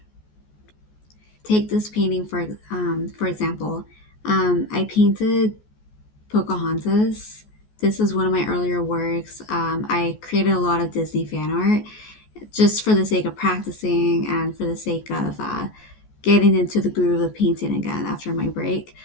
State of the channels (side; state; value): right; late; 14 ms